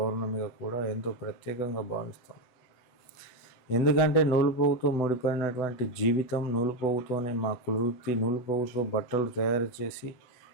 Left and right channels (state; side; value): late; right; 8.1 ms